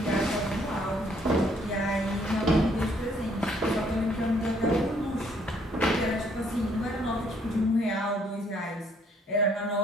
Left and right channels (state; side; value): normal; both; correlation 0.66